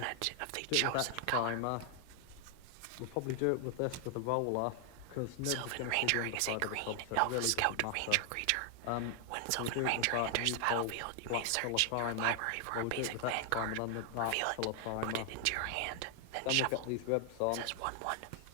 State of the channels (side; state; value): both; different; correlation 0.00